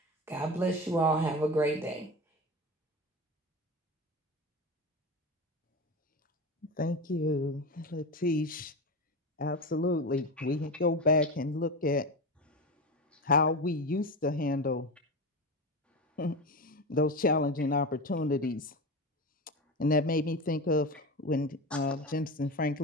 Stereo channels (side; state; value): both; normal; correlation 0.23